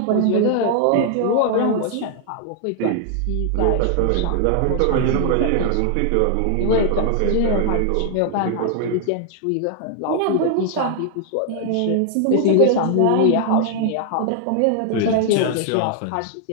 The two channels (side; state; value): both; different; correlation 0.00